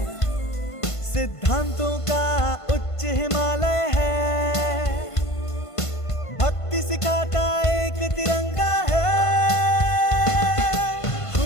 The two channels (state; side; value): late; right; 1.5 ms